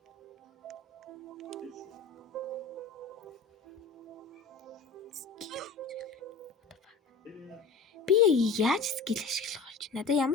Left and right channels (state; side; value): quieter; right; 4.4 dB